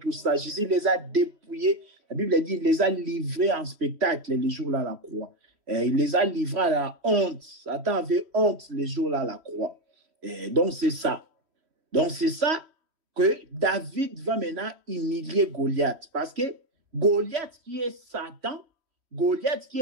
ça. Jésus les a dépouillés. La Bible dit qu'il les a livrés en spectacle les jours-là à la croix. Il les a livrés à la honte. Satan avait honte les jours-là à la croix. Donc, c'est ça. Donc, c'est ça que David va maintenant humilier Goliath. Parce que Goliath, qui est Satan, Goliath, qui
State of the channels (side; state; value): left; late; 3.1 ms